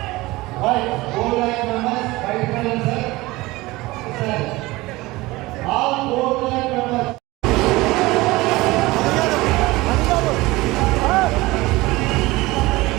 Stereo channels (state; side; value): quieter; left; 20.4 dB